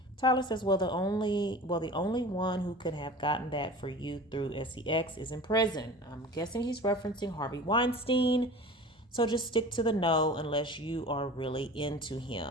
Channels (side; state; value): both; normal; correlation 0.38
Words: Tyler says, the only one who could have gotten that for you through sex is in prison. I'm guessing he's referencing Harvey Weinstein. So just stick to the no unless you are really into